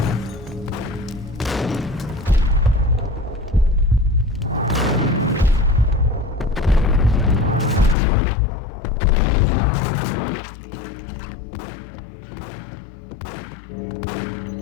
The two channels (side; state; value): right; drops out; at 8.0 s